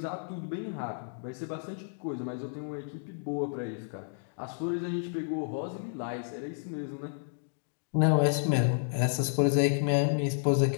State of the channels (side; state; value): right; silent; digital silence